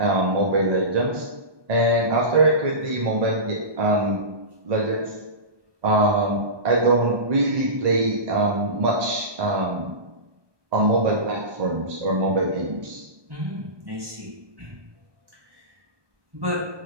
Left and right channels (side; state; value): left; late; 1.2 ms